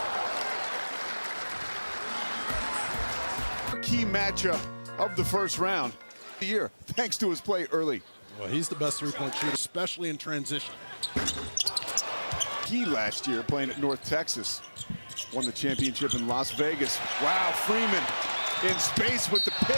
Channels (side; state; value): both; inverted; correlation -1.00